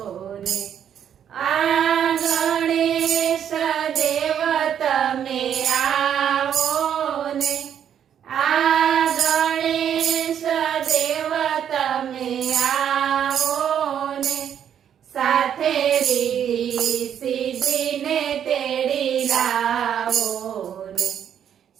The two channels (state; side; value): quieter; left; 9.1 dB